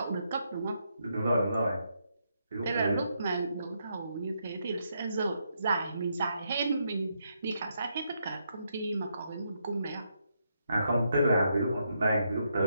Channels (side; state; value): both; inverted; correlation -0.79